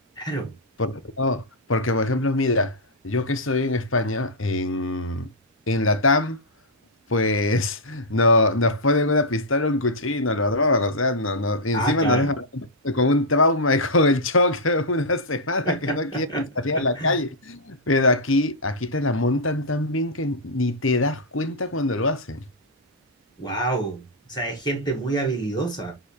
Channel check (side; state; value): both; normal; correlation -0.09